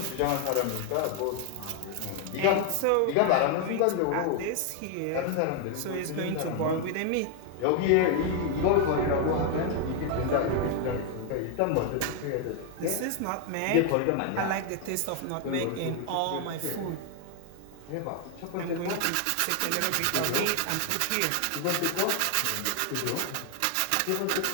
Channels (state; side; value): different; both; correlation 0.00